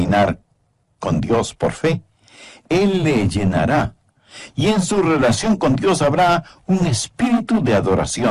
con Dios por fe, Él le llenará. Y en su relación con Dios habrá un espíritu de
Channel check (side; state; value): both; identical; correlation 1.00